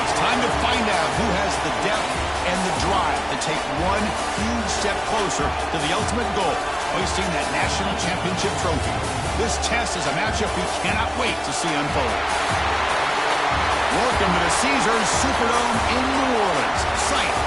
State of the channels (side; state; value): both; identical; correlation 1.00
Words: It's time to find out who has the depth and the drive to take one huge step closer to the ultimate goal, hoisting that national championship trophy. This test is a matchup we cannot wait to see unfold. Welcome to the Caesars Superdome in New Orleans, site